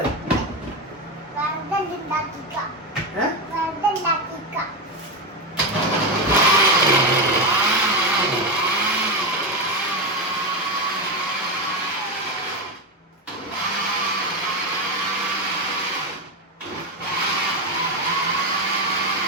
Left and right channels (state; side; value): normal; both; correlation 0.12